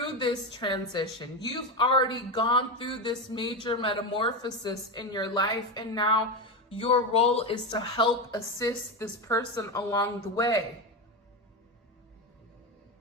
this transition. You've already gone through this major metamorphosis in your life. And now your role is to help assist this person along the way.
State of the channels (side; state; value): both; normal; correlation 0.15